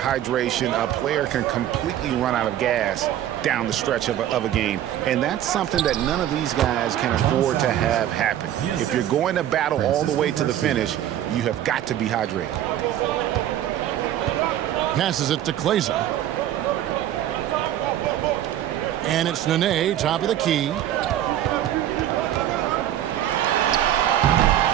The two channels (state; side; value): quieter; left; 11.8 dB